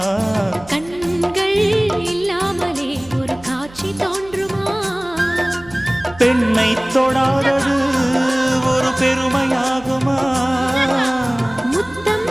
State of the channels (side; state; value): right; noise; hum, 21 dB below the sound